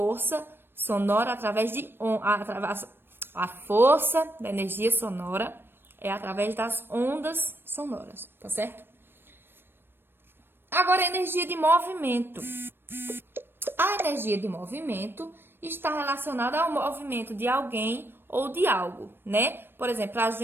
sonora através de a força da energia sonora é através das ondas sonoras, tá certo? Agora, a energia de movimento. A energia de movimento está relacionada ao movimento de alguém ou de algo, né? Por exemplo, para a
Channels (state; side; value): late; left; 0.10 ms